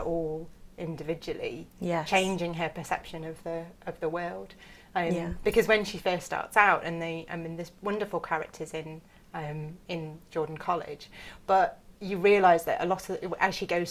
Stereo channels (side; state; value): both; identical; correlation 1.00